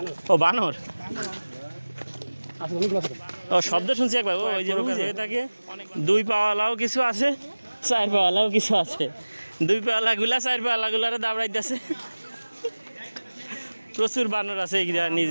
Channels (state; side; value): inverted; both; correlation -1.00